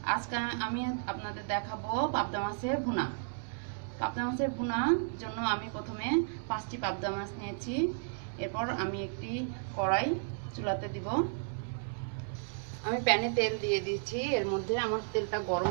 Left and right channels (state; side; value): silent; left; digital silence